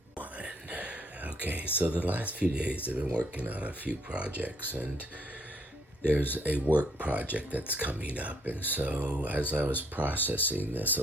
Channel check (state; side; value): normal; both; correlation 0.68